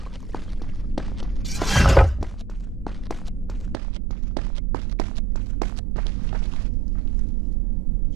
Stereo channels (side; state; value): left; drops out; at 3.8 s